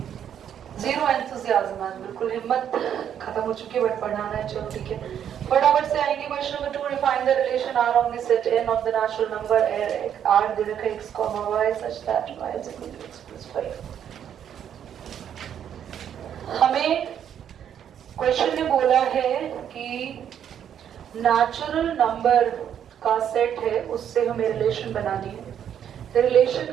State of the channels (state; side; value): quieter; left; 9.3 dB